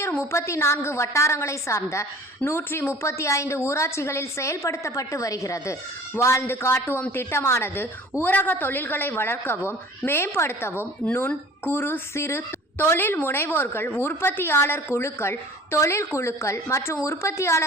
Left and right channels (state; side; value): normal; both; correlation 0.46